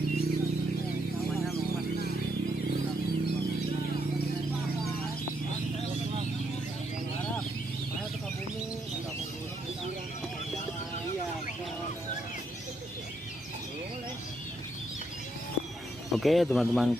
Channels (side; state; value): both; normal; correlation 0.77